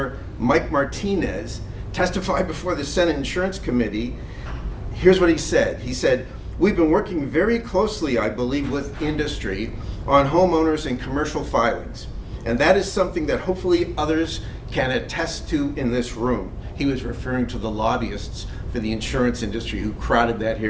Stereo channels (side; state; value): both; identical; correlation 1.00